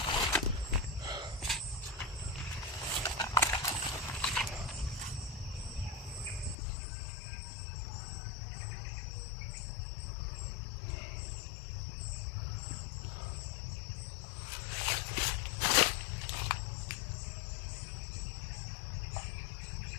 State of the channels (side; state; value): right; drops out; at 6.6 s